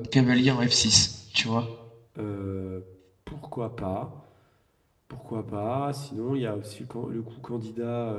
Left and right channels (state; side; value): identical; both; correlation 1.00